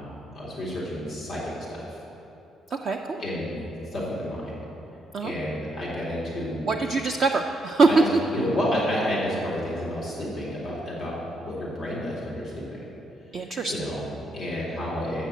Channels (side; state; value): both; normal; correlation 0.78